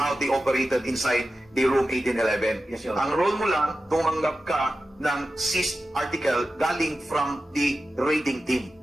they operated inside the room 1811. Yes, Your Honor. Ang role mo lang, tumanggap ka ng seized article galing from the raiding team.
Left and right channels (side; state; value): both; normal; correlation 0.93